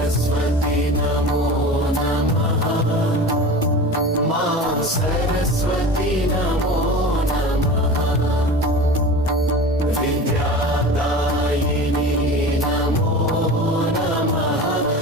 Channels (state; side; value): normal; both; correlation 0.34